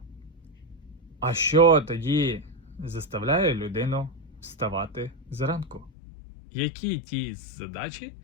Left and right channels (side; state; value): right; drops out; at 5.9 s